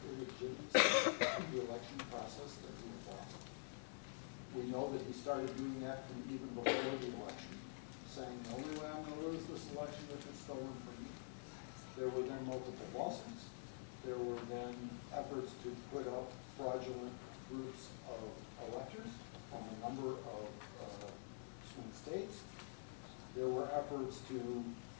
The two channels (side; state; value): right; silent; digital silence